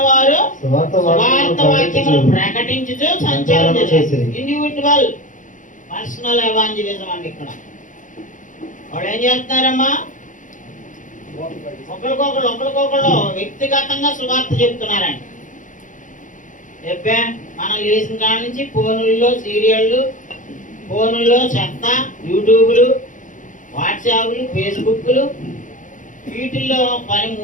వారు సువార్త వాక్యములు ప్రకటించుచు సంచారం చేశారు. ఇండివిజువల్ పర్సనల్ ఎవాంజలిజం అండి. ఇక్కడ వాళ్ళు ఏం చేస్తున్నారమ్మా? ఒకరికొకళ్ళు వ్యక్తిగతంగా సువార్త చెప్తున్నారండి. చెప్పే మనం లేచిన కాడ నుంచి ఫోనుల్లో సీరియళ్ళు, ఫోనుల్లో చెత్త, యూట్యూబ్లు, వాట్సాప్లు, ఫేస్బుక్లు, వీటిల్లో పని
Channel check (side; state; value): right; late; 0.37 ms